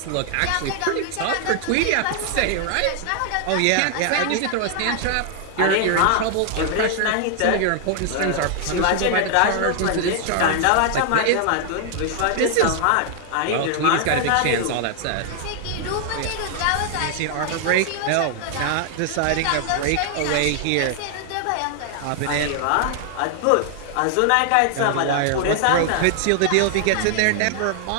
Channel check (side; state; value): both; different; correlation 0.00